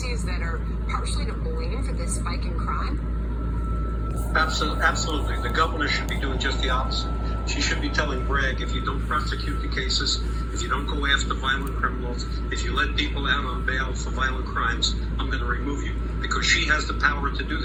that are partially to blame for this spike in crime? Absolutely. The governor should be doing just the opposite. She should be telling Bragg, if you don't prosecute the cases, if you don't go after violent criminals, if you let people out on bail for violent crimes, I'm going to remove you. Because she has the power to do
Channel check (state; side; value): identical; both; correlation 1.00